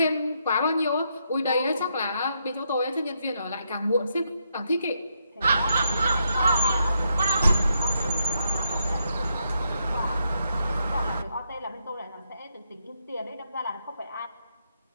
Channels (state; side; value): inverted; both; correlation -0.80